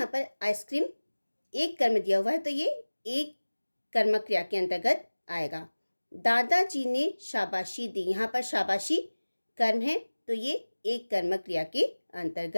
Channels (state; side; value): inverted; both; correlation -1.00